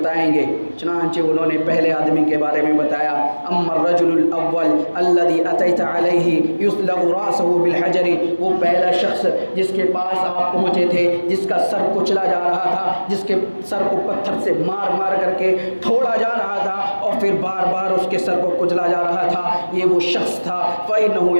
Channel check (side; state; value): both; inverted; correlation -1.00